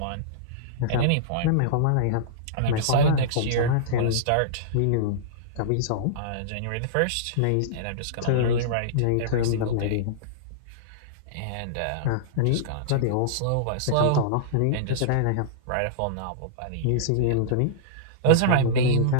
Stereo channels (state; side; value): different; both; correlation -0.03